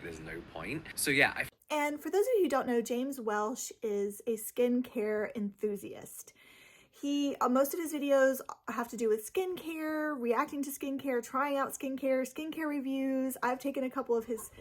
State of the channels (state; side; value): identical; both; correlation 1.00